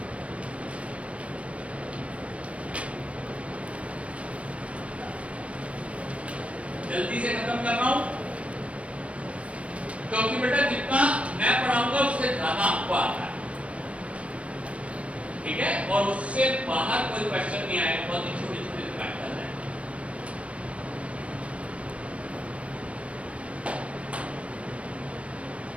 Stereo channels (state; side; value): late; left; 0.063 ms